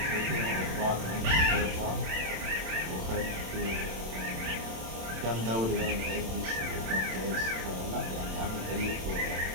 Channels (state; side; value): late; left; 27 ms